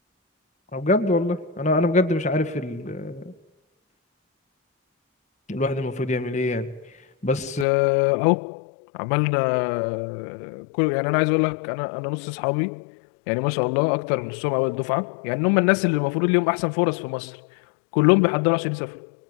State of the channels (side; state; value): right; drops out; at 7.7 s